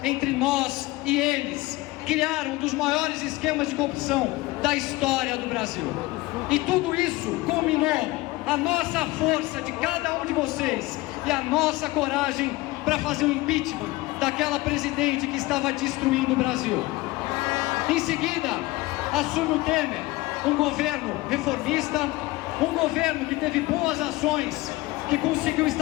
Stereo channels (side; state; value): right; quieter; 20.1 dB